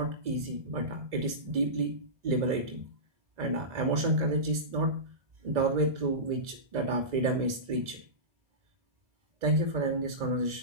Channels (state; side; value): late; left; 2.0 ms